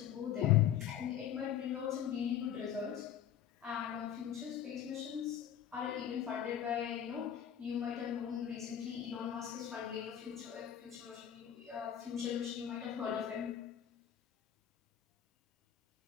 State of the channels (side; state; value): right; quieter; 9.8 dB